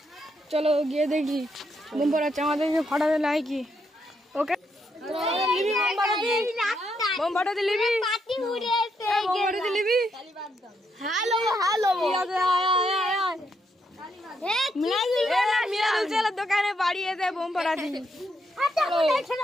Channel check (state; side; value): normal; both; correlation 0.78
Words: চলো গিয়ে দেখি বোম ফাটাচ্ছে আমাদেরকে ফাটাতে নাই কি। ওকে বোম ফাটাতে লিবি, বোম ফাটাতে লিবি। হ্যালো হ্যালো মিরাজের দোকানে বাড়ি এসে বোম ফাটাচ্ছি।